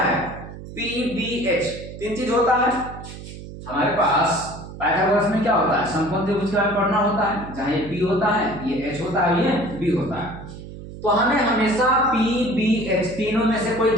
है p b h 3 चीज होता है। हमारे पास पाइथागोरस में क्या होता है, समकोण त्रिभुज के बारे में पढ़ना होता है, जहाँ ये p होता है, ये h होता है, ये b होता है। तो हमें हमेशा p b h तीनों में से कोई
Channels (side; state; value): right; noise; hum, 13 dB below the sound